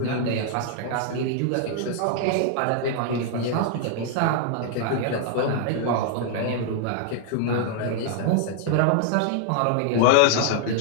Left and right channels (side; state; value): both; different; correlation 0.00